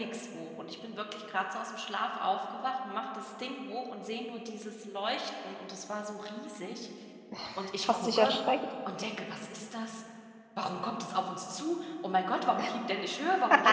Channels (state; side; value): identical; both; correlation 1.00